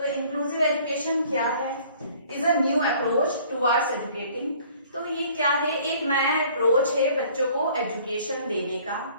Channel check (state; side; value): inverted; both; correlation -0.54